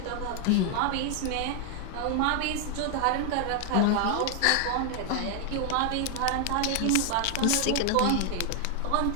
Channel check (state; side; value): different; both; correlation 0.00